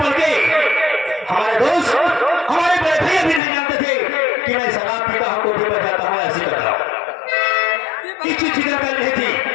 के हमारे दोस्त हमारे बड़े भैया भी नहीं जानते थे कि मैं शराब पीता हूँ कोठी पर जाता हूँ ऐसी करता हूँ किसी फिक्र कर रही थी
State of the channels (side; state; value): right; drops out; at 3.4 s